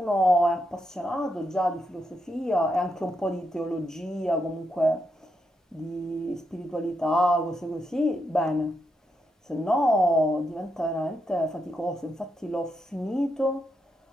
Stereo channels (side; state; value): both; normal; correlation 0.82